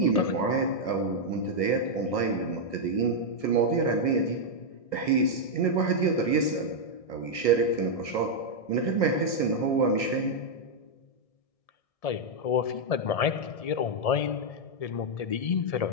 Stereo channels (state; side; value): late; right; 1.7 ms